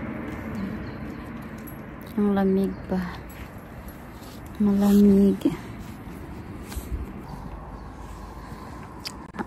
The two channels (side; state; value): both; identical; correlation 1.00